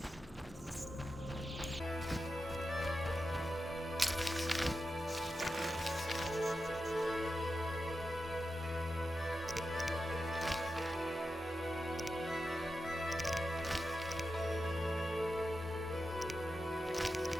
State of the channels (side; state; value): both; normal; correlation 0.90